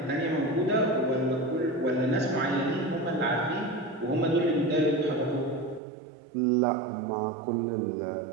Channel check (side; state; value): left; drops out; at 5.8 s